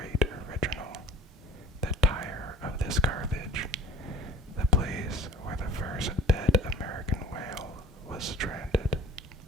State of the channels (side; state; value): both; normal; correlation 0.48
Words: original, the tire of this garbage, the place where the first dead American whale was stranded.